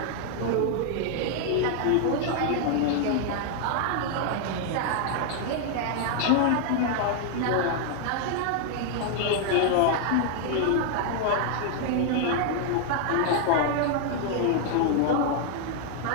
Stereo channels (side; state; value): both; different; correlation 0.00